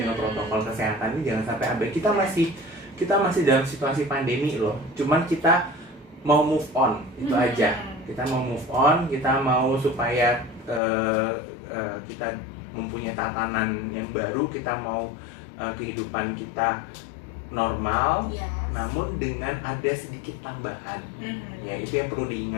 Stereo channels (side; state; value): right; drops out; at 10.8 s